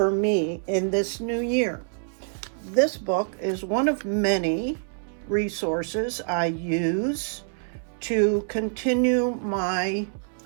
me in this new year. This book is one of many resources I use to continue my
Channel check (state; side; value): silent; left; 61 dB below the other